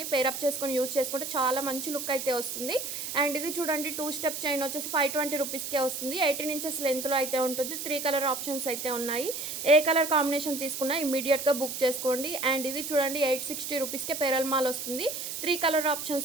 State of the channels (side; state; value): right; noise; hiss, 5 dB below the sound